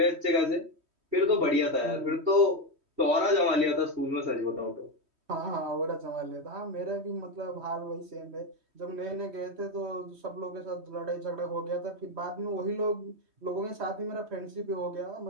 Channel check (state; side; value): late; left; 3.1 ms